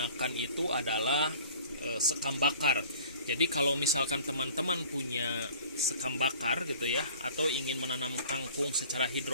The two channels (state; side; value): inverted; both; correlation -0.47